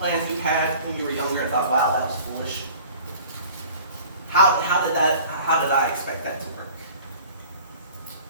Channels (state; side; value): inverted; both; correlation -0.47